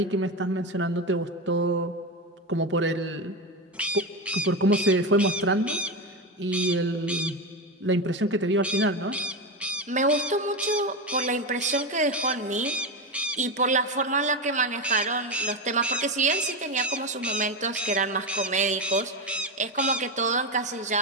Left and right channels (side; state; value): both; normal; correlation 0.16